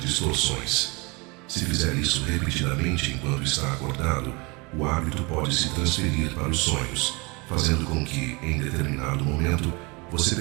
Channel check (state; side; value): quieter; left; 27.8 dB